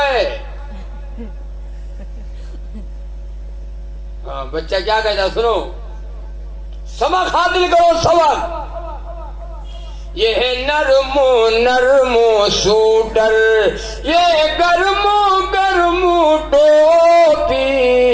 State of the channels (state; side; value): identical; both; correlation 1.00